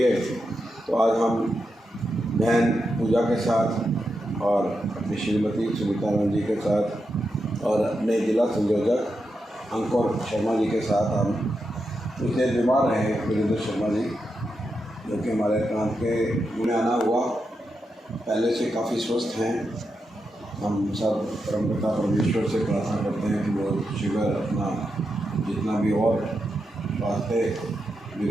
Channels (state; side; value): normal; both; correlation 0.86